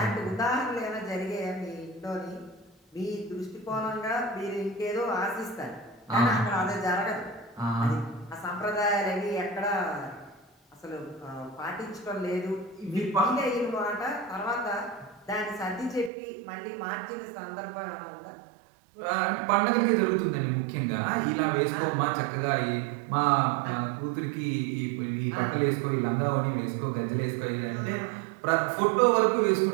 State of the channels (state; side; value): drops out; left; at 16.1 s